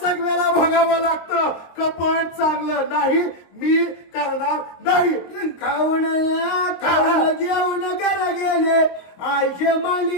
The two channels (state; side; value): late; right; 23 ms